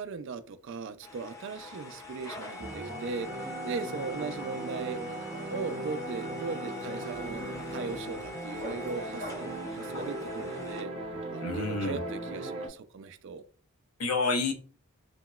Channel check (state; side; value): normal; both; correlation 0.14